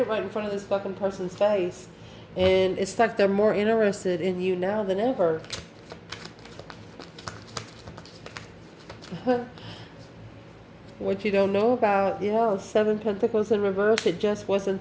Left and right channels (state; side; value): identical; both; correlation 1.00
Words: right in front of this fucking person's face. And it's like they're more interested in you now than ever. What you don't know about, yeah, 7 Pentacles in reverse, it just wasn't